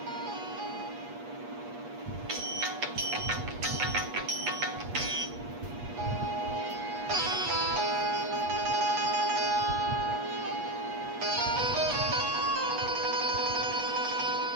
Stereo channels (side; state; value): left; late; 8.3 ms